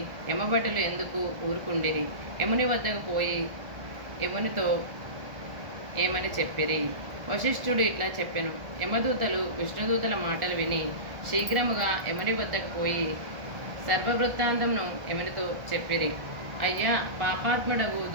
యమభటులు ఎందుకు ఊరుకుండిరి? యముని వద్దకు పోయి యమునితో ఏమని చెప్పిరి? వశిష్ఠుడు ఇట్లా చెప్పెను. యమదూతలు విష్ణుదూతల మాటలు విని శీఘ్రముగా యముని వద్దకు పోయి సర్వవృత్తాంతంను యమునితో చెప్పిరి. అయ్యా, పాపాత్ముడగు,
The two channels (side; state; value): left; late; 1.4 ms